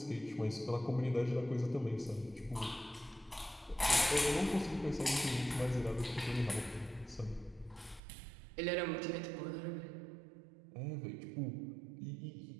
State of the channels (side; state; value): left; drops out; at 8.0 s